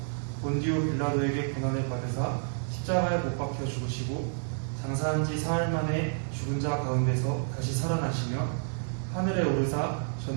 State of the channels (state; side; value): silent; left; 58 dB below the other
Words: 본디오 빌라도에게 고난을 받으사 십자가에 못 박혀 죽으시고 장사한 지 사흘 만에 죽은 자 가운데서 다시 살아나시며 하늘에 오르사